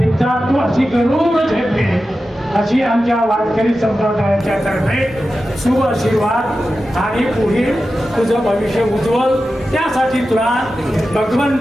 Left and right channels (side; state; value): both; normal; correlation 0.92